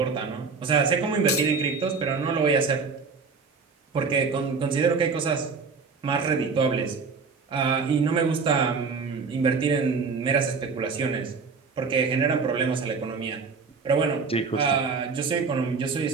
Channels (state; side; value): quieter; left; 4.9 dB